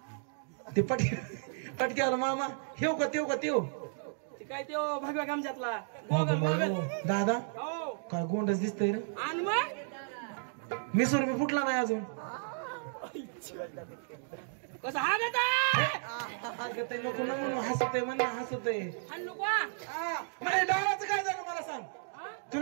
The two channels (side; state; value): left; silent; digital silence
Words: ते पटक्याला मामा ठेव का तेव ते काय त्यो भगव्या गमजातला गोगल दादा हो काय गोंडच दिसतंय रे आणि मग मिसूर मी फुटला नाही अजून कसं हागत नको ना म्हणून हसतय आणू का म्हणजे डावाचं काय झालं मला सांग